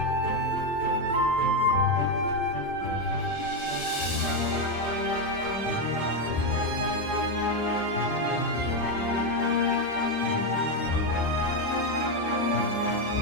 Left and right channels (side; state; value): left; late; 5.0 ms